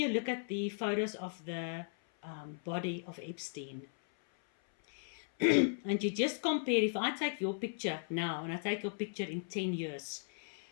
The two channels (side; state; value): right; silent; 53 dB below the other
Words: look at the photos of the body of Epstein, and you just compare, if I take your picture now and I take your picture in 10 years,